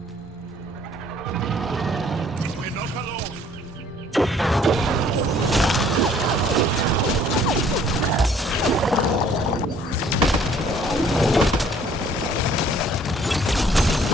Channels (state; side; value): normal; both; correlation 0.58